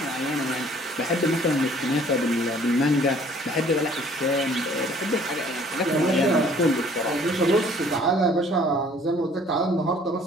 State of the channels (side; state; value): both; normal; correlation 0.56